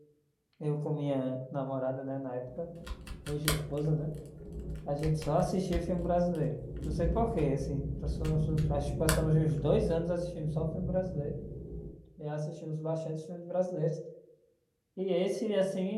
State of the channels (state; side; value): identical; both; correlation 1.00